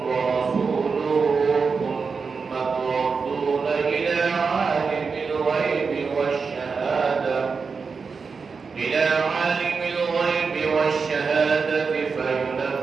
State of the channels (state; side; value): quieter; left; 5.1 dB